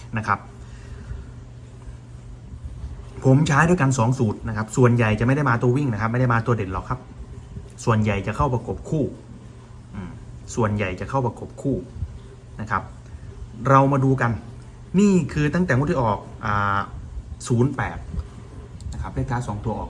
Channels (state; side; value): identical; both; correlation 1.00